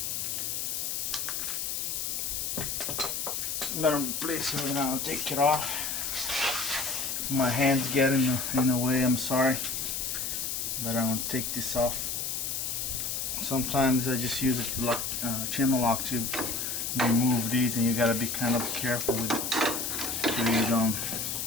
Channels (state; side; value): noise; left; hiss, 2 dB below the sound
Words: I'm gonna place it right now, take it off. My hands get in the way, I'm sorry, but I'm gonna take this off. Sometimes I just use a lock, channel lock to remove these, and you gotta be kind of careful with it so you don't